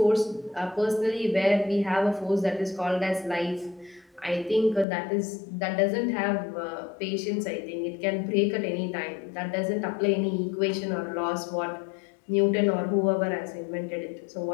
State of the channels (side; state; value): right; drops out; at 4.9 s